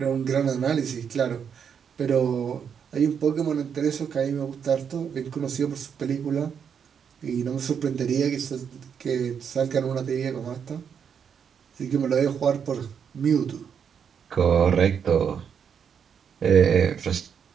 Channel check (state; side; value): quieter; left; 7.4 dB